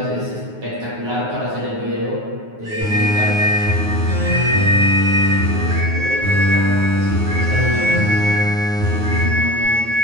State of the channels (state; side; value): late; left; 9.4 ms